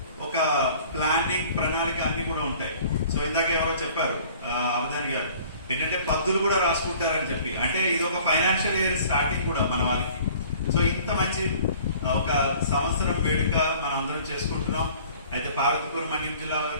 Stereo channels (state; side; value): inverted; both; correlation -0.50